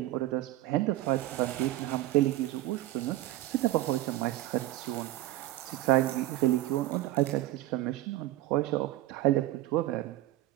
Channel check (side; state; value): left; quieter; 15.8 dB